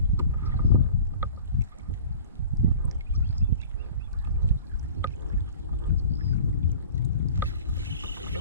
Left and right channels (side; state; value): both; inverted; correlation -0.44